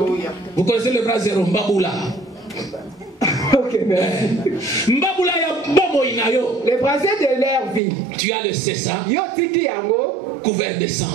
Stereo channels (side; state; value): left; drops out; at 7.8 s